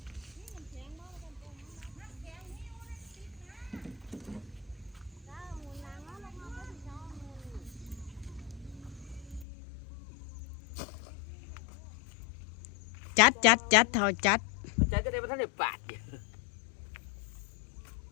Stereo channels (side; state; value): right; drops out; at 9.5 s